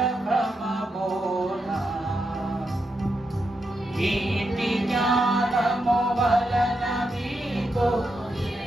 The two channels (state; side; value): normal; both; correlation 0.84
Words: ఇంటి జ్ఞానము వలన మీకు